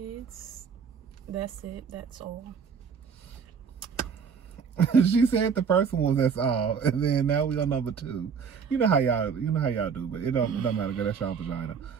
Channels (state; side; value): quieter; left; 6.4 dB